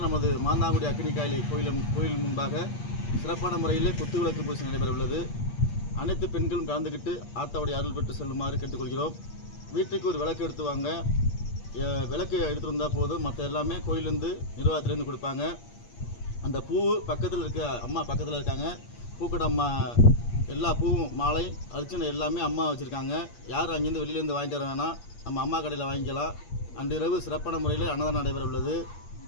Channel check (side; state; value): right; late; 8.5 ms